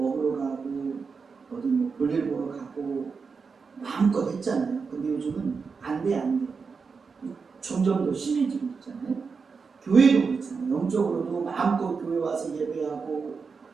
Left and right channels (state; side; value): quieter; left; 5.2 dB